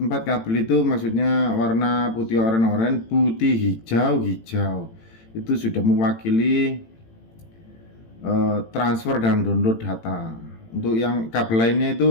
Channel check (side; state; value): right; late; 18 ms